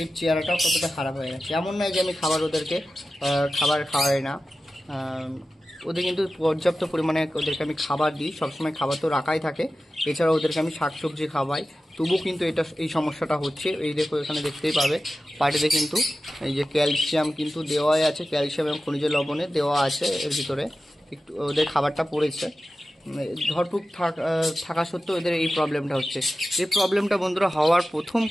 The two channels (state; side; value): normal; both; correlation 0.94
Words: চেহারাটাও কতটা খারাপ হয়ে গেছে। এমন নয় যে আমি ওদেরকে খাবার খাওয়াই না, ওদের কিন্তু পর্যাপ্ত পরিমাণে ওদেরকে আমি খাবার দিই, সবসময় খাবার তো রাখাই থাকে। এছাড়া ওদেরকে আমি শাকসবজি খাওয়াই, তবুও কিন্তু এই সমস্যাটা হচ্ছে। এই দেখো এখানে দেখতেই পাবে পাটিতে কিন্তু এই যে ক্যালসিয়াম কিন্তু দেওয়াই আছে, ক্যালসিয়াম এবং খনিজ লবণে দেওয়া আছে এর ভিতরে, একটু ওদের খাবারটা পড়েছে। ধরপুক থাকা সত্ত্বেও এদের এই প্রবলেমটা হচ্ছে। এই প্রবলেমটা বন্ধুরা হওয়ার প্রথম